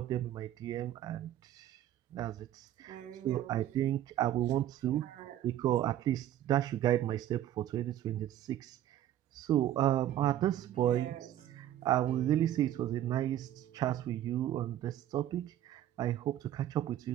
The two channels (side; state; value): left; quieter; 12.2 dB